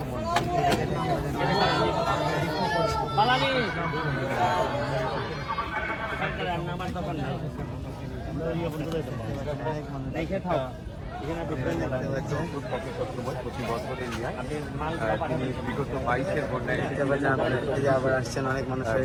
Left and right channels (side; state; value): both; identical; correlation 1.00